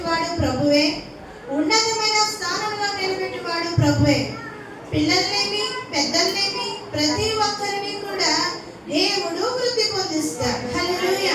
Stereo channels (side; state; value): both; identical; correlation 1.00